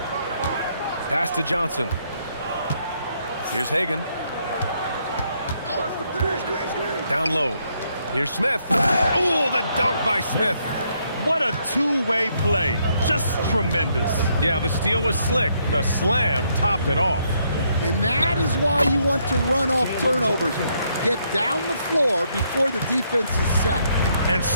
Pass to Johnson. Here's Hagan. Down low. Here's Smith. Oh, the dunk by Smith. What a two-way play. Just tremendous. Yeah, the steal was slick. The slam topped it off. And that is why you want to run off turnovers. Get down the floor before the defense is set. And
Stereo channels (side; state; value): both; inverted; correlation -0.73